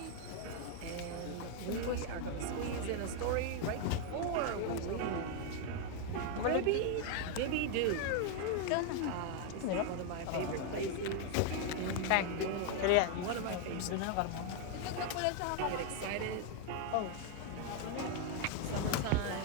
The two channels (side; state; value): both; different; correlation 0.00